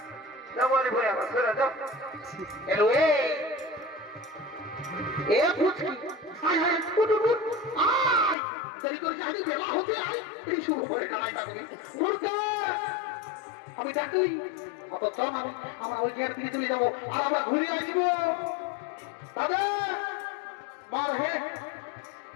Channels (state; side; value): drops out; right; at 8.3 s